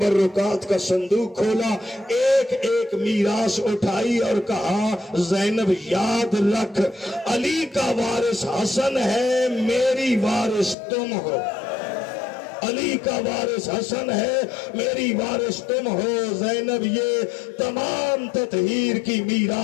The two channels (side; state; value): right; drops out; at 10.8 s